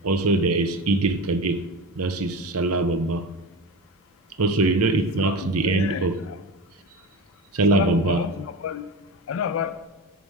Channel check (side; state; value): both; normal; correlation 0.26